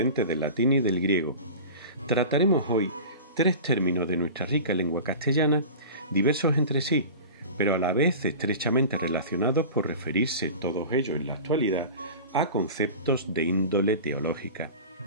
del latín y del griego. Trataremos hoy 3 términos de nuestra rica lengua castellana, diversos entre sí, pero a la vez estrechamente relacionados por referirse todos ellos en la actualidad a conceptos de índole teológica.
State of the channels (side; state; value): both; inverted; correlation -0.35